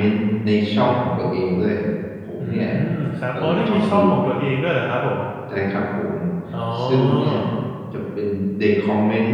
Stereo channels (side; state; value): both; identical; correlation 1.00